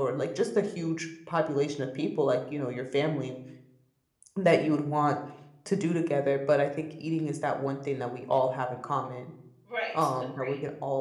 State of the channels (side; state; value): both; identical; correlation 1.00